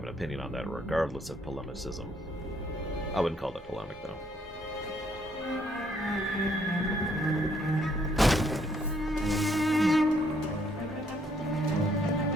an opinion on that, regardless of polemicism. I wouldn't call that polemic, though.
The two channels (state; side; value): normal; both; correlation 0.68